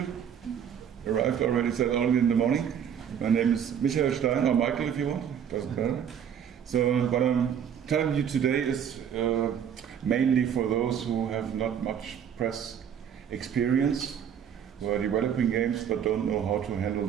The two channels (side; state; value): left; quieter; 8.5 dB